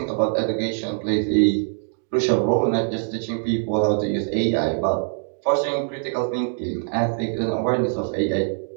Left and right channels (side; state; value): left; silent; 63 dB below the other